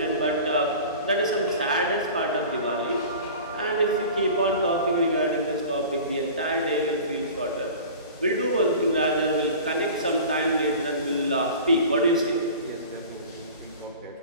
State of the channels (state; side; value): inverted; both; correlation -0.39